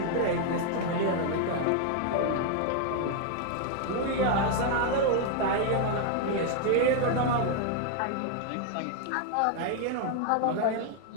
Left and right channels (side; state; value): both; different; correlation 0.00